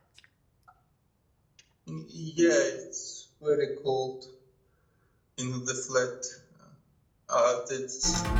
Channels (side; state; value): both; identical; correlation 1.00